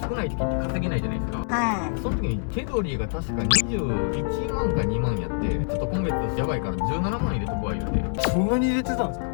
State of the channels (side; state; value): right; silent; 61 dB below the other